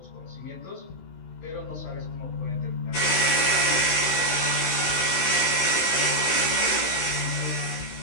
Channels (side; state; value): right; late; 16 ms